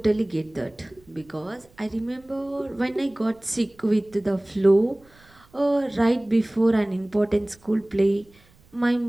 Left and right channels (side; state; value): right; noise; rumble, 29 dB below the sound